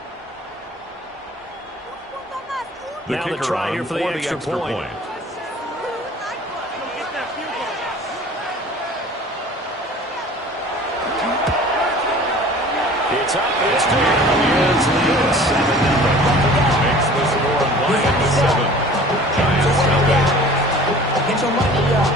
Now the try here for the extra point. It's up, it's good. Lions lead at 7-0. Makes the score Lions 7. Giants nothing. Get your money up.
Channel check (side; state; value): both; normal; correlation 0.45